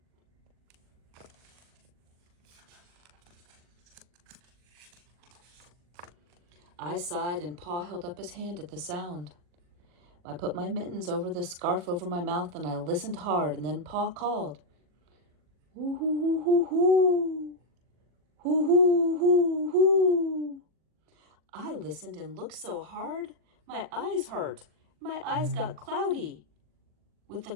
I sighed, and Pa held up his hand at the sound. I put my mittens over the scarf over my mouth, and I listened hard, and then Pa called, "Hoo, hoo, hoo, hoo, hoo. Hoo, hoo, hoo, hoo." I listened and looked so hard, my eyes hurt. My eyes got cloudy with the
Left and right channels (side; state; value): left; late; 40 ms